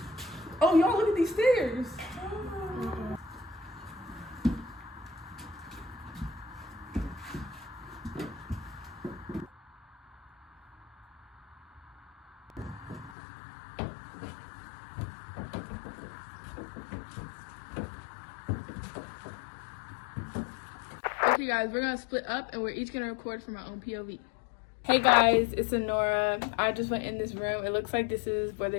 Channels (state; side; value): drops out; right; at 13.2 s